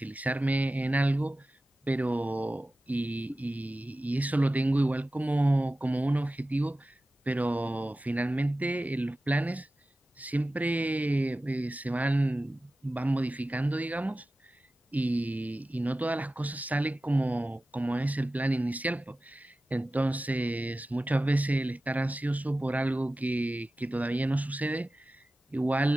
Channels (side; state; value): both; normal; correlation 0.95